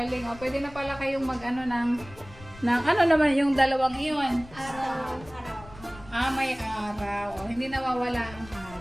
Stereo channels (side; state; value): left; noise; rumble, 19 dB below the sound